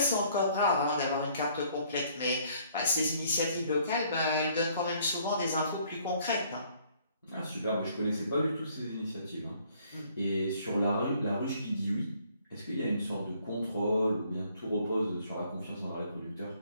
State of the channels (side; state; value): both; inverted; correlation -0.62